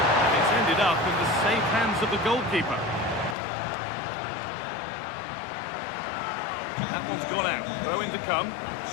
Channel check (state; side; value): drops out; right; at 3.4 s